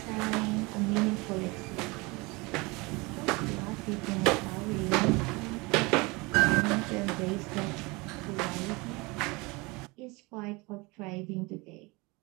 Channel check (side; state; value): left; quieter; 25.2 dB